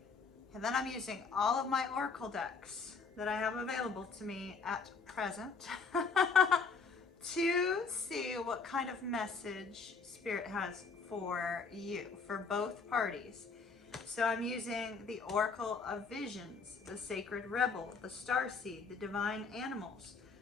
And then I'm using all of my oracle decks that I have available to me at present to see what kind of message Spirit has for you, for both parties. So I'm using the Oracle of Visions, the Sacred Rebel, the Starseed, the Divine Animals,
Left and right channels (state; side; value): quieter; right; 4.9 dB